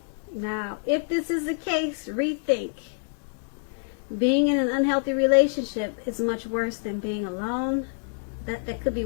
Now, if this is the case, rethink. Being in an unhealthy relationship is much worse than being alone. That could be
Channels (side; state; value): right; silent; digital silence